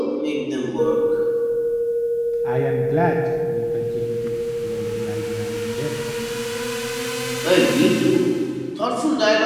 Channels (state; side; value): identical; both; correlation 1.00